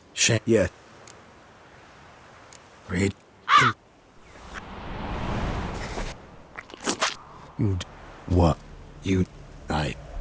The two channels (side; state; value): both; identical; correlation 1.00